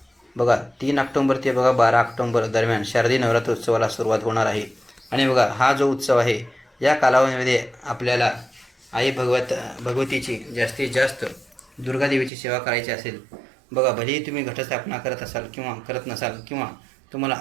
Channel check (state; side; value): drops out; left; at 12.3 s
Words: बघा 3 ऑक्टोबर ते 12 ऑक्टोबर दरम्यान शारदीय नवरात्र उत्सवाला सुरुवात होणार आहे. आणि बघा हा जो उत्सव आहे या कालावधीमध्ये आपल्याला आई भगवतीची जास्तीत जास्त दुर्गादेवीची सेवा करायची असेल. बघा भलेही तुम्ही घटस्थापना करत असाल किंवा करत नसाल किंवा तुम्हाला